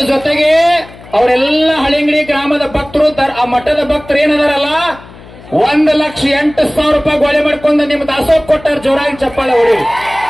ಜೊತೆಗೆ ಅವರೆಲ್ಲ ಹಳಿಂಗಡಿ ಗ್ರಾಮದ ಭಕ್ತರು, ಆ ಮಠದ ಭಕ್ತರು ಏನದಾರಲ್ಲ 1,08,000 ರೂಪಾಯಿ ಗೋಳೆ ಮಾಡ್ಕೊಂಡು ನಿಮ್ಮ ದಾಸೋಹ ಕೊಟ್ಟಾರ. ಜೋರಾಗಿ ಚಪ್ಪಾಳೆ ಹೊಡಿ.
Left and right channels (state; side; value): noise; left; hum, 20 dB below the sound